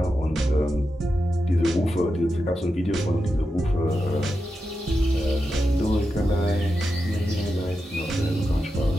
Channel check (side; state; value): both; normal; correlation 0.89